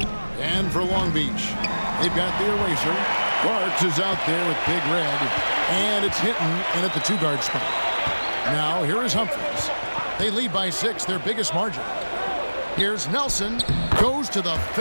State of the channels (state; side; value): inverted; both; correlation -1.00